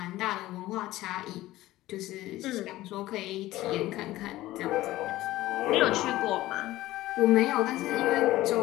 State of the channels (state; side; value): quieter; right; 16.4 dB